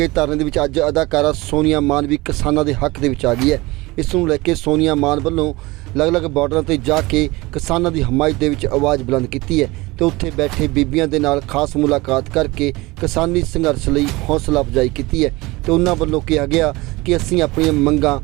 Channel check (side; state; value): left; quieter; 21.8 dB